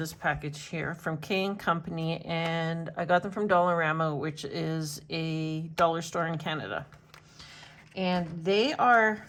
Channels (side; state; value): both; identical; correlation 1.00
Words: package here from K & Company, and I got them from Dollarama, which is a dollar store in Canada. And they are